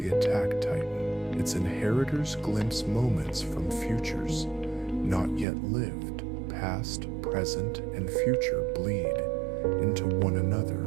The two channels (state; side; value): drops out; left; at 5.5 s